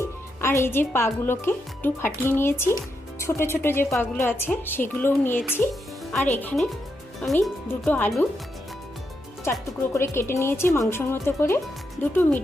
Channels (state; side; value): normal; both; correlation 0.83